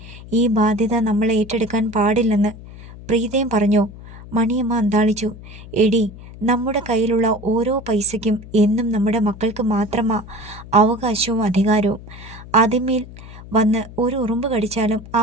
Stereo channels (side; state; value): left; noise; hum, 16 dB below the sound